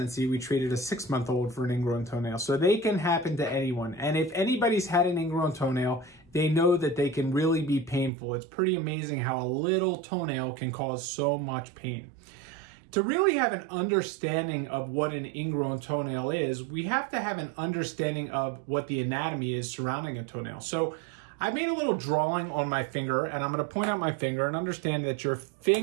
We treated a 6-month-old for an ingrown toenail. So they can happen to anyone. And if anybody's had an ingrown toenail, they know that they can really be painful. It's pretty amazing how a little toenail can cause so much pain. To really have an understanding of what an ingrown toenail is, we have to have an understanding of what the anatomy is surrounding a toenail. So I made a little drawing on my finger, and I'm going to point out my finger and understand that your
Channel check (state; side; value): drops out; left; at 8.1 s